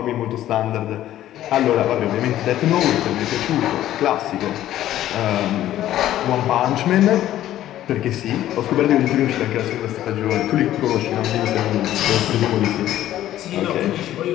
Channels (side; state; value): right; quieter; 13.0 dB